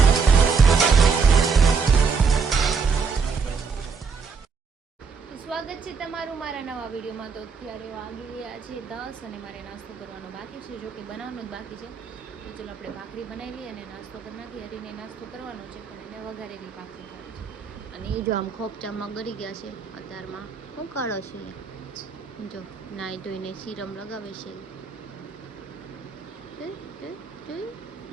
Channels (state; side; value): quieter; left; 5.4 dB